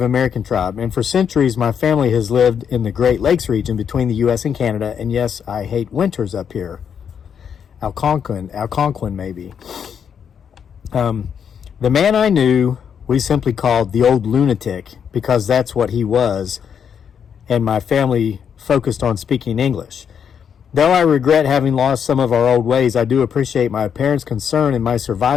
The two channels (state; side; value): quieter; right; 7.7 dB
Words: American tribe. And for centuries, my family has lived in the Great Lakes region between the U.S. and Canada. And yes, I hate winters up here. Algonquin maybe. The man I knew, we simply called the old lunatic because that's what he was. And my family focused on speaking English. Though I regret having lost some of our old ways, I do appreciate my parents' concern in my